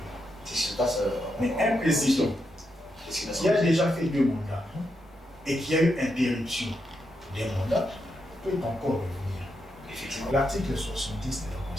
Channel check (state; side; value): normal; both; correlation 0.83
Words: C'est ce qui se passe. Mais un président qui a déjà fait 2 mandats et qui a eu interruption des mandats peut encore revenir. Effectivement. L'article 70 de la